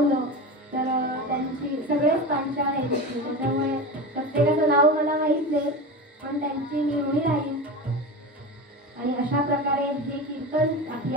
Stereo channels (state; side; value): normal; both; correlation 0.26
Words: तर त्यांची सगळेच पांचाळ आहेत इथे, त्याच्यामुळे प्रत्येकाचं नाव मला माहीत नाही, पण त्यांची मी ऋणी राहीन. आणि अशा प्रकारे हे कीर्तन, आपली